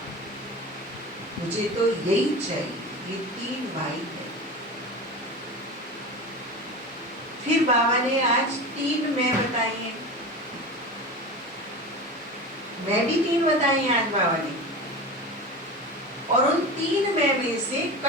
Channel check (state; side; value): normal; both; correlation 0.29